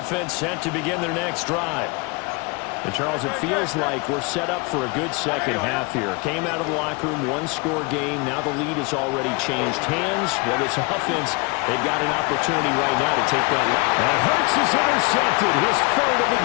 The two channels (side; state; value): right; quieter; 27.7 dB